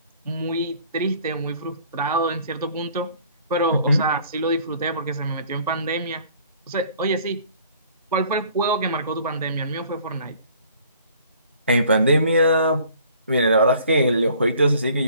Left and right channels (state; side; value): inverted; both; correlation -0.55